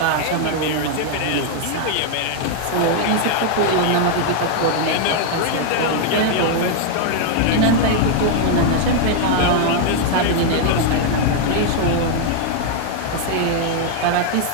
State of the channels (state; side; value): different; both; correlation 0.00